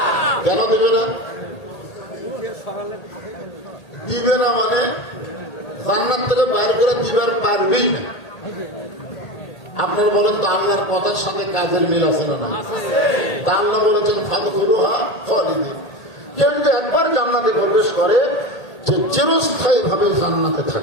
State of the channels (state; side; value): late; right; 1.8 ms